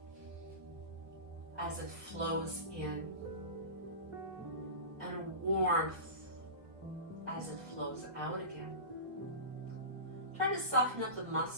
as it flows in, and a warmth as it flows out again. Try to soften up the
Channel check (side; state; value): left; late; 1.5 ms